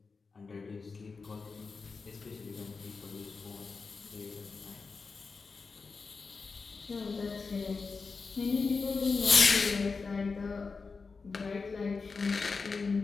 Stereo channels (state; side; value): quieter; right; 4.6 dB